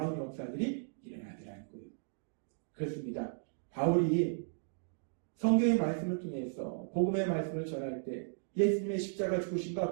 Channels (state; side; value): silent; left; digital silence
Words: 역사들이 일어나더라는 거예요. 그렇습니다. 바울이 성경의 말씀을 통해서 복음의 말씀을 전할 때 예수님의 십자가